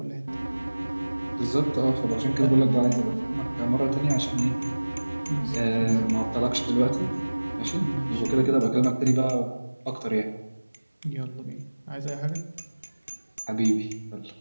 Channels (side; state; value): both; inverted; correlation -1.00